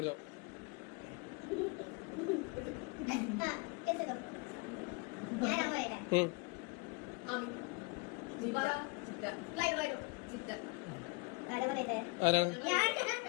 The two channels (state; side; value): quieter; right; 28.3 dB